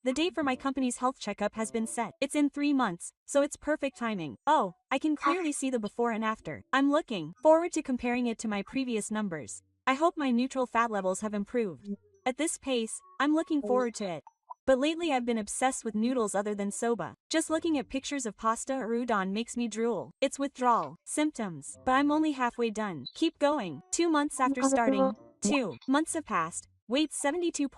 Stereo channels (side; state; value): both; identical; correlation 1.00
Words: the date for my company's health checkup has been set. It's in 3 months, so it's perfect timing. Oh, I can clearly see the before and after. I'm looking forward to comparing it to my previous numbers. I hope my neutral fat levels have improved. At this pace, I'm looking forward to it. But lately I've been obsessed with noodles other than soba. Just looking at pictures of pasta or udon makes me drool. It's withdrawal symptoms, but I'm only halfway done. Keep going. 2 months after starting. 2 months have passed. Weight